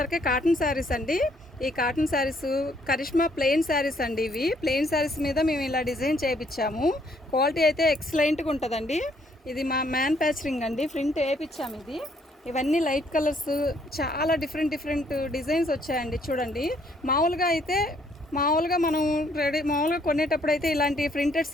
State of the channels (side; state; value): both; normal; correlation 0.67